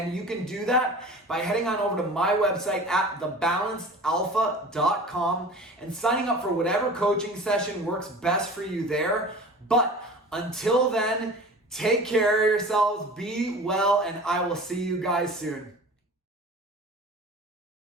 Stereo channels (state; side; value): normal; both; correlation 0.39